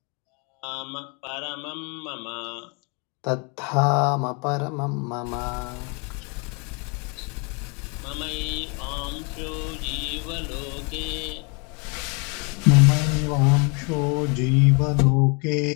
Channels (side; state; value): right; quieter; 33.0 dB